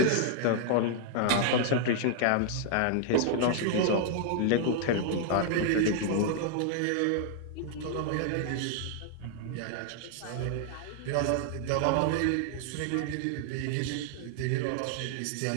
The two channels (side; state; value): both; different; correlation 0.00